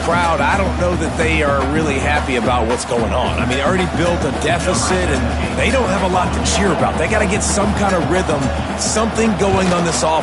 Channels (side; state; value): both; identical; correlation 1.00